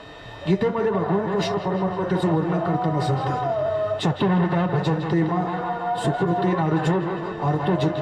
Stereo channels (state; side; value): identical; both; correlation 1.00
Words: गीतेमध्ये भगवान कृष्ण परमात्मा त्याचं वर्णन करताना सांगतात, चतुर्विधा भजन्ते मा सुकृतीन अर्जुन अर्थो